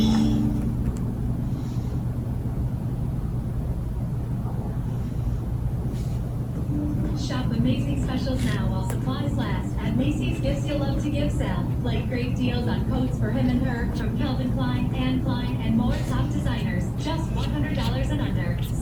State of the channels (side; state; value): both; identical; correlation 1.00